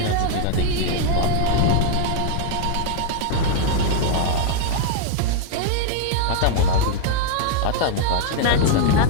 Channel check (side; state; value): both; different; correlation 0.00